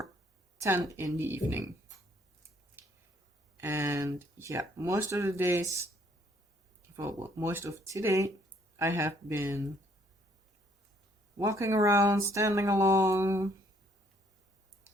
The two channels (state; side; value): normal; both; correlation 0.66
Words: 10 in the evening. And yeah, most of the days, well, most of today, I have been walking around, standing along,